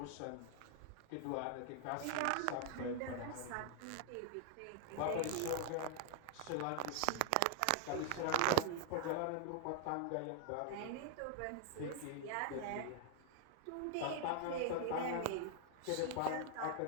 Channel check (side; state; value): both; different; correlation 0.00